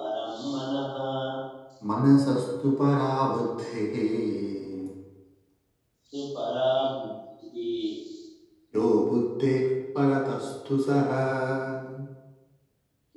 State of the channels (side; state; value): both; identical; correlation 1.00